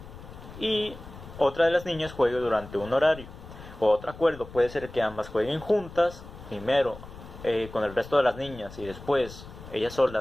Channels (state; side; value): noise; left; rumble, 15 dB below the sound